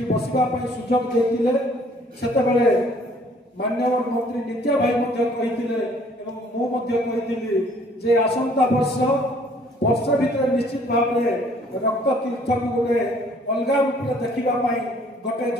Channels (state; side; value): normal; both; correlation 0.59